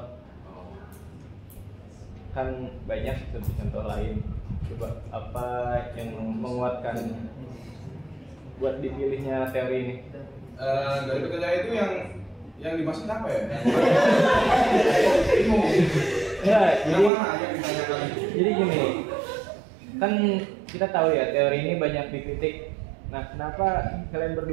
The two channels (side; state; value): left; drops out; at 17.1 s